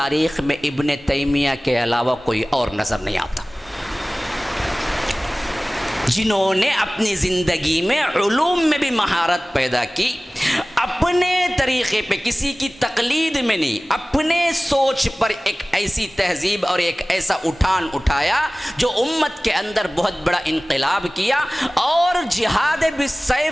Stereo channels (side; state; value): both; normal; correlation 0.98